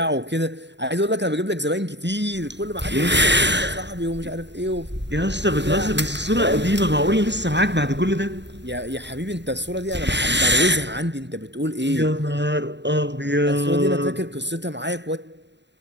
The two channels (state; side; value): late; left; 0.52 ms